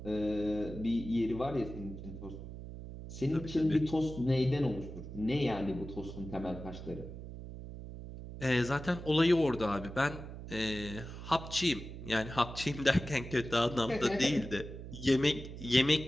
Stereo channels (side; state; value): right; noise; hum, 11 dB below the sound